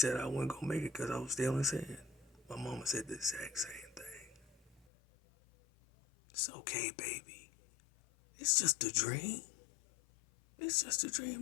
I wasn't going to make it because I was still in sin. My mama said the exact same thing. It's okay, baby. It's just a dream. It's just a dream,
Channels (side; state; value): right; drops out; at 4.9 s